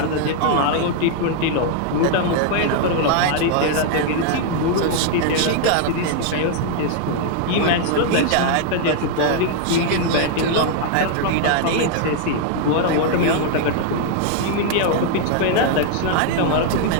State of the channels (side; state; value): both; different; correlation 0.00